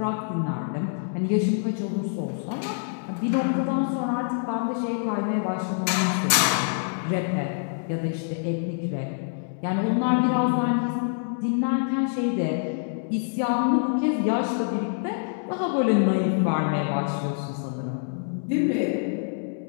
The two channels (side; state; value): right; silent; digital silence